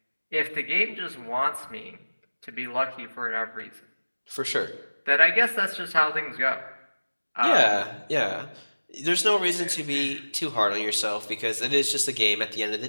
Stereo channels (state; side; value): inverted; both; correlation -1.00